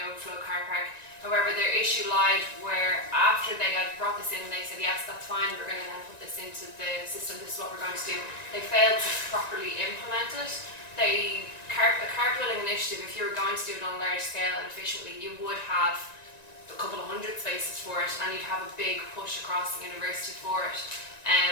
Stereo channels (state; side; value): late; right; 1.9 ms